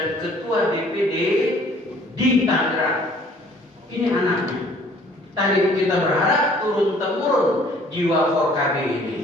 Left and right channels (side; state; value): both; normal; correlation 0.56